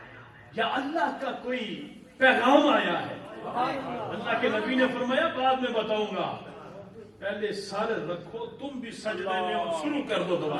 یا اللہ کا کوئی پیغام آیا ہے؟ اللہ کے نبی نے فرمایا بعد میں بتاؤں گا، پہلے سر رکھو، تم بھی سجدے میں اور شروع کر دو دعا۔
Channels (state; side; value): identical; both; correlation 1.00